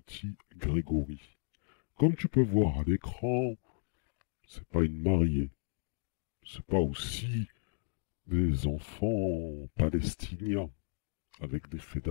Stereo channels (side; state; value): right; silent; digital silence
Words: Grégory. Comme tu peux voir à l'écran, c'est pas une mariée. C'est pas aussi des enfants palestiniens avec des